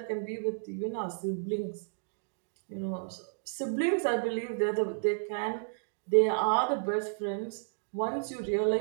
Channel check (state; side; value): silent; left; digital silence